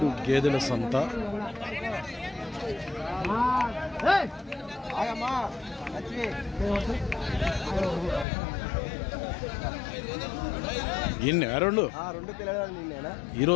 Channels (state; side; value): drops out; right; at 8.2 s